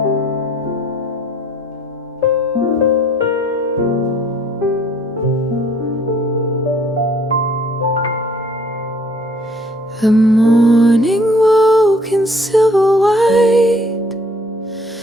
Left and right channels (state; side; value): normal; both; correlation 0.59